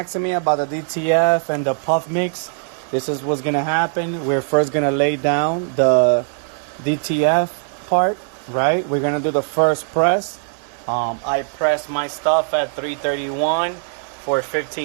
me about the DTF and the puff mix. This is what's gonna happen. We're first gonna lay down the DTF part, right? We're gonna do the first press. I press my stuff at 331 for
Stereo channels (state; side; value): silent; left; digital silence